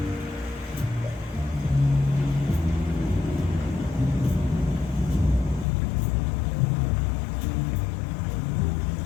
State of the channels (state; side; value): drops out; right; at 5.7 s